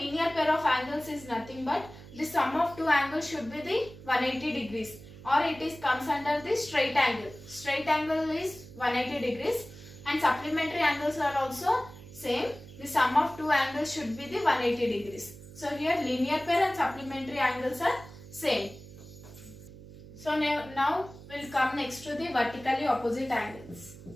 pair of angles is nothing but the sum of two angles should be the 180 degrees, or it is comes under the straight angle. Straight angle is 180 degrees and supplementary angles are also same. The sum of two angles should be the 180 degrees. So here linear pair and supplementary angles are same. So now we'll come next to the vertically opposite angles.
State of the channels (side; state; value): right; noise; hum, 17 dB below the sound